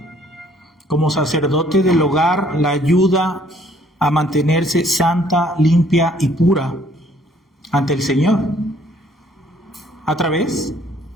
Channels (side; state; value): both; normal; correlation 0.62